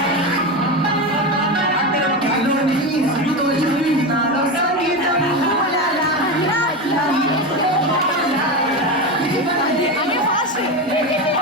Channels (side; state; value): both; normal; correlation 0.18